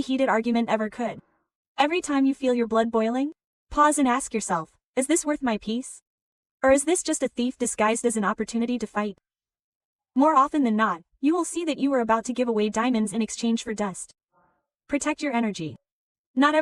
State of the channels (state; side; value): identical; both; correlation 1.00